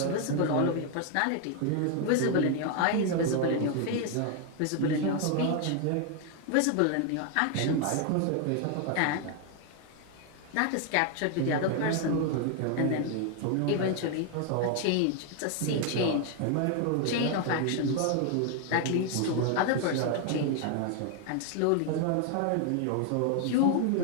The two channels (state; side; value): different; both; correlation 0.01